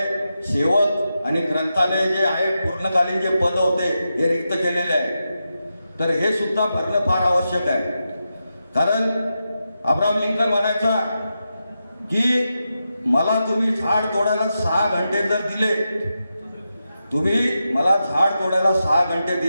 सेवक आणि ग्रंथालय जे आहे पूर्णकालीन जे पद होते हे रिक्त केलेले आहे। तर हे सुद्धा भरणं फार आवश्यक आहे। कारण अब्राहम लिंकन म्हणायचा की मला तुम्ही झाड तोडायला 6 घंटे जर दिले, तुम्ही मला झाड तोडायला 6 घंटे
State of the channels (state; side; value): inverted; both; correlation -0.88